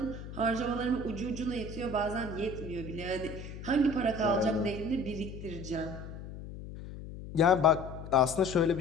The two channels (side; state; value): left; noise; hum, 11 dB below the sound